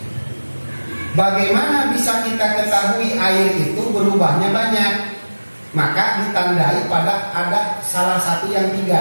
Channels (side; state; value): both; inverted; correlation -1.00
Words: bagaimana bisa kita ketahui air itu berubahnya banyak? Maka ditandai pada ada salah satu yang 3.